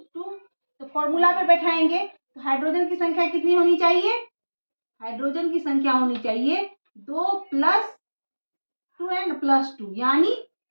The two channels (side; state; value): both; inverted; correlation -1.00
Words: तो फॉर्मूला पे बैठाएंगे तो हाइड्रोजन की संख्या कितनी होनी चाहिए? हाइड्रोजन की संख्या होनी चाहिए 2 प्लस 2n प्लस 2, यानी